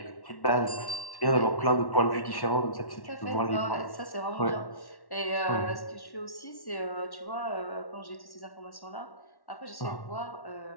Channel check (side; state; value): right; late; 1.1 ms